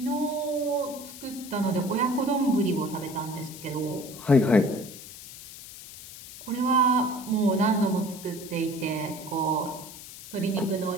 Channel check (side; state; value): left; noise; hiss, 14 dB below the sound